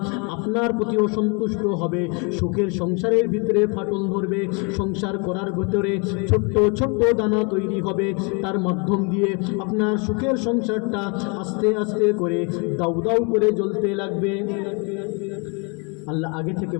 আপনার প্রতি অসন্তুষ্ট হবে, সুখের সংসারের ভিতরে ফাটল ধরবে, সংসার করার ভিতরে ছোট্ট ছোট্ট দানা তৈরি হবে, তার মাধ্যম দিয়ে আপনার সুখের সংসারটা আস্তে আস্তে করে দাউ দাউ করে জ্বলতে লাগবে। আল্লাহ আগে থেকে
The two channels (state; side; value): quieter; right; 33.2 dB